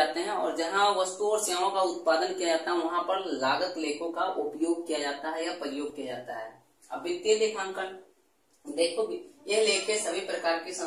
हैं और जहां वस्तुओं और सेवाओं का उत्पादन किया जाता है वहां पर लागत लेखों का उपयोग किया जाता है या प्रयोग किया जाता है। अब वित्तीय लेखांकन, देखो ये लेखे सभी प्रकार की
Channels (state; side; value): identical; both; correlation 1.00